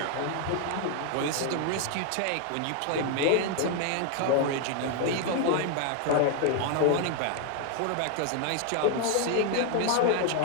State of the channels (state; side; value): different; both; correlation 0.01